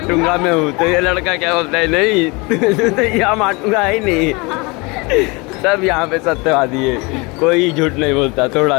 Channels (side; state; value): right; quieter; 27.0 dB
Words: मैं हूँ। तो ये लड़का क्या बोलता है, नहीं तो यहाँ माटूंगा ही नहीं। सब यहाँ पे सत्यवादी है, कोई झूठ नहीं बोलता थोड़ा